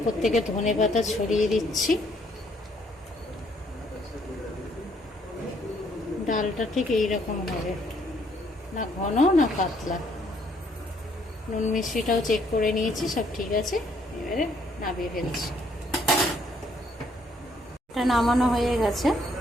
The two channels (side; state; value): both; normal; correlation 0.67